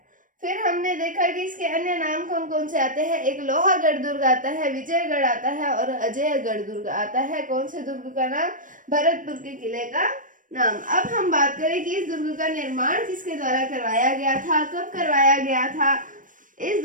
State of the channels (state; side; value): late; left; 0.38 ms